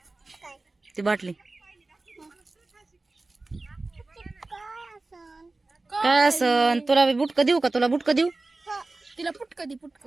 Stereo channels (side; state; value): left; quieter; 3.2 dB